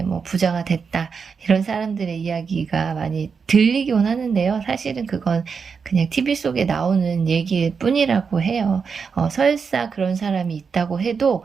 뭐 부자가 됐다 이런 사람들의 이야기가 많이 들리곤 하는데요. 사실은 그건 그냥 TV 속에 나오는 얘기일 뿐이라고 해요. 설사 그런 사람이 있다고 해도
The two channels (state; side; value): quieter; left; 5.7 dB